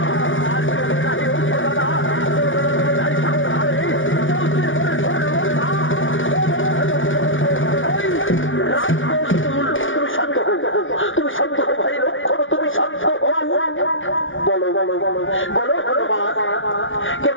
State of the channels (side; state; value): right; late; 0.57 ms